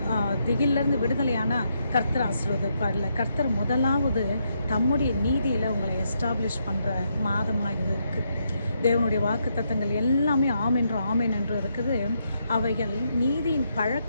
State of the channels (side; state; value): both; inverted; correlation -0.79